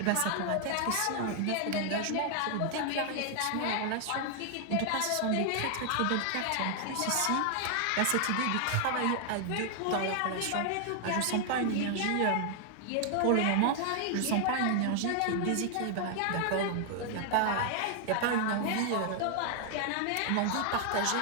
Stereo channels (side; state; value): both; different; correlation 0.00